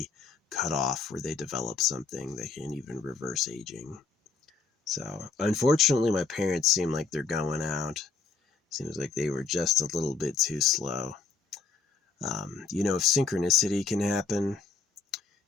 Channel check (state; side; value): quieter; right; 4.6 dB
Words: cutoff where they develop something that can even reverse aging. So unfortunately, my parents seem like they're going out. Seems like they were just a little bit too slow. If synchronicity can happen,